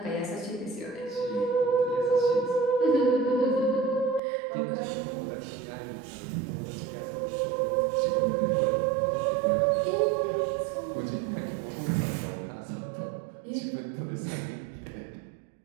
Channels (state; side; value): drops out; left; at 4.2 s